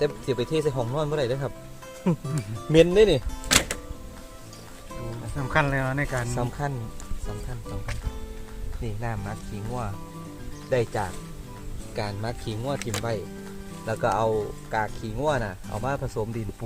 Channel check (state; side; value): identical; both; correlation 1.00